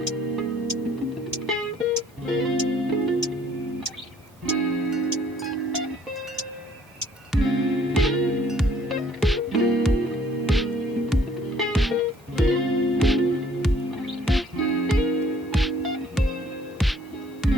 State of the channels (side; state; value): both; normal; correlation 0.60